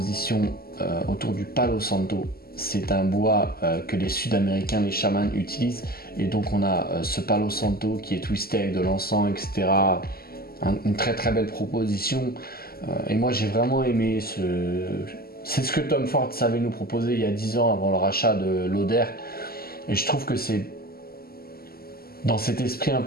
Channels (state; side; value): late; right; 0.44 ms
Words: autour du Palo Santo. C'est un bois que les Sud-Américains, les chamans utilisent. Et donc on a ce Palo Santo qui est twisté avec de l'encens, etc. Une très très belle proposition. Et moi j'ai vraiment aimé c'est ce que Tom Ford savait nous proposer il y a 10 ans avant le rachat de Lauder. Et je trouve que c'est dans cet esprit un